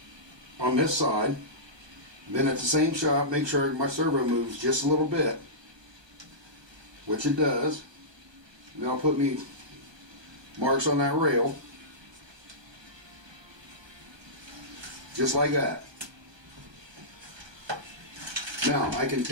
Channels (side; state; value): left; late; 1.3 ms